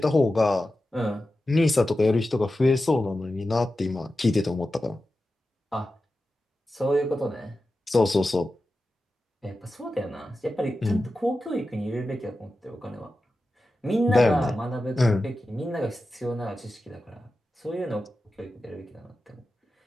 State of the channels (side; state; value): both; normal; correlation 0.92